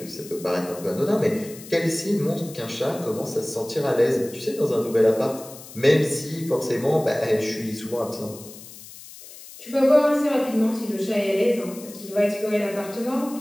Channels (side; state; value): left; noise; hiss, 17 dB below the sound